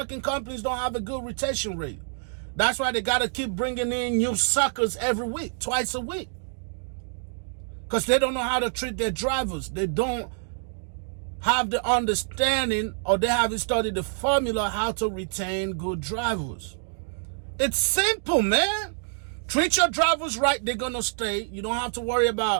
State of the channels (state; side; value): silent; left; digital silence